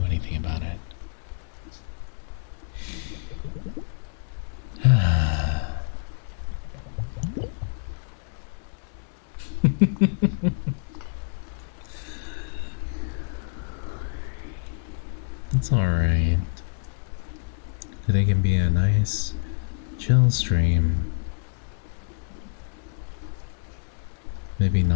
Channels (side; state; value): right; silent; digital silence